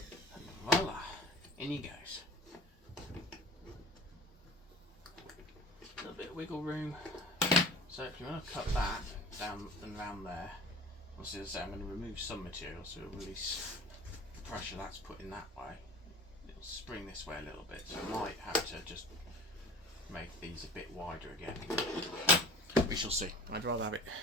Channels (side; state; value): both; normal; correlation 0.40